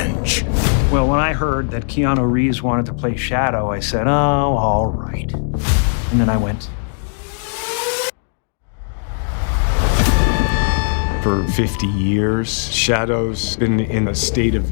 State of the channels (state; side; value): silent; right; 67 dB below the other